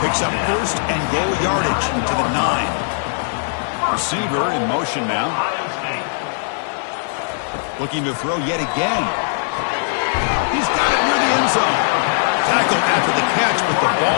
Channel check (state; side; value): silent; right; 66 dB below the other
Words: picks up first and goal yardage to the 9. Receiver in motion now. Looking to throw yet again. He's got it near the end zone. Tackled after the catch, but the